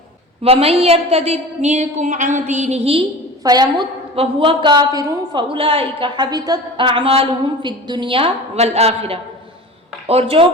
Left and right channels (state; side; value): normal; both; correlation 0.36